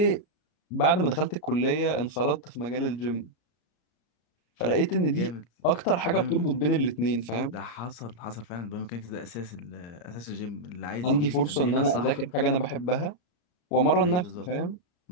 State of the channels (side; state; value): right; late; 33 ms